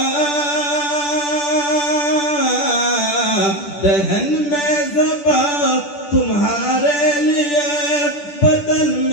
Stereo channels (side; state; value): right; late; 10 ms